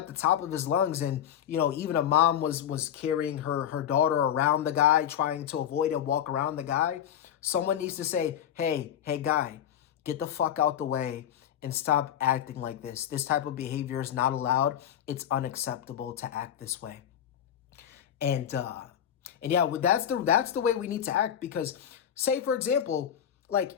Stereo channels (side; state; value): right; quieter; 10.0 dB